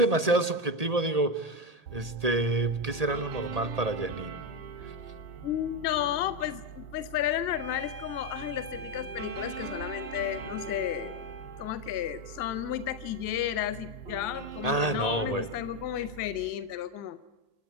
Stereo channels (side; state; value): left; late; 1.8 ms